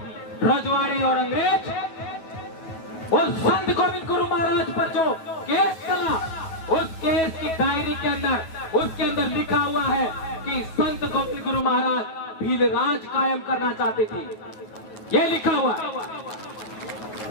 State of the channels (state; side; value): late; right; 9.3 ms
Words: रजवाड़ी और अंग्रेज। और संत गोविंद गुरु महाराज पर जो केस चला, उस केस की डायरी के अंदर, उसके अंदर लिखा हुआ है कि संत गोविंद गुरु महाराज भील राज कायम करना चाहते थे। ये लिखा हुआ।